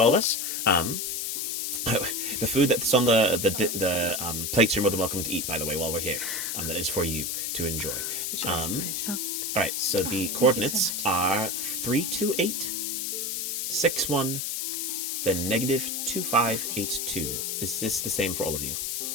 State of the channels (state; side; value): noise; left; hiss, 2 dB below the sound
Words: of us. The food that's on the plates you're more than welcome to eat, by the way, while we're here. That is for you to enjoy. All right, so the coordinates are 328, 61, then negative 2582. Is this the same for all of you?